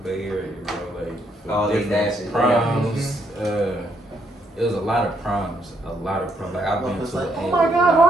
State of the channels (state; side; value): normal; both; correlation 0.73